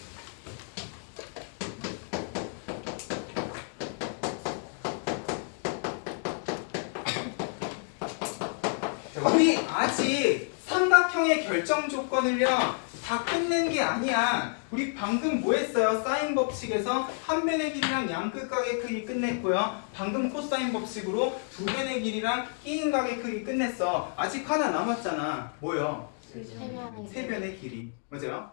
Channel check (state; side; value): silent; right; 58 dB below the other